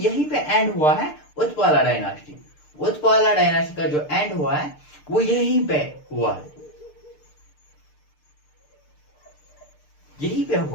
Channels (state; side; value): late; right; 6.7 ms